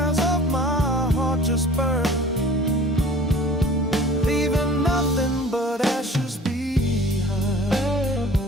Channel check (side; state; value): both; normal; correlation 0.46